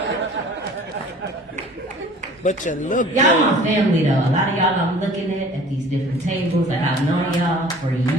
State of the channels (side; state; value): both; normal; correlation 0.48